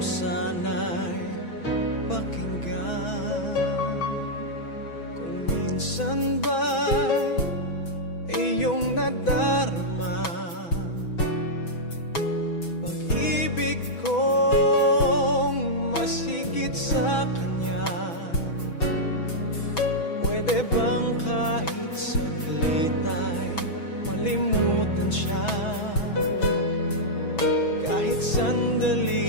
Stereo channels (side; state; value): right; late; 6.1 ms